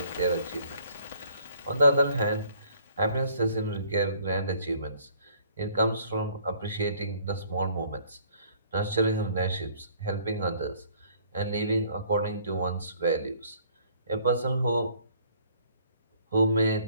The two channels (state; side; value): inverted; both; correlation -0.59